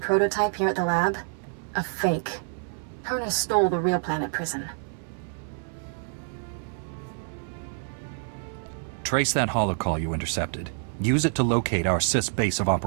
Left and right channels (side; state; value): left; silent; 59 dB below the other